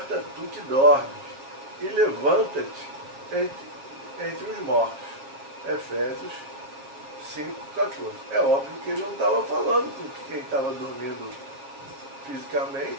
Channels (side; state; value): left; late; 7.6 ms